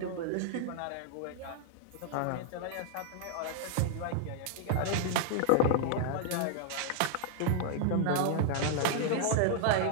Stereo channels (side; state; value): both; different; correlation 0.00